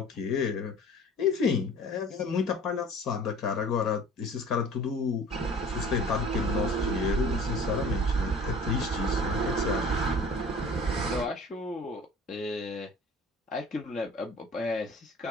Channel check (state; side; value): normal; both; correlation 0.44